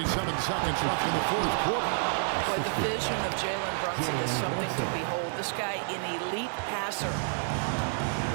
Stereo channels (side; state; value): left; silent; 58 dB below the other